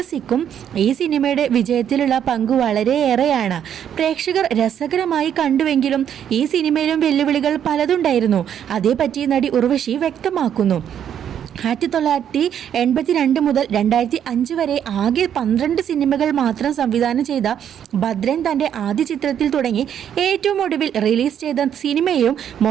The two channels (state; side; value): quieter; left; 9.3 dB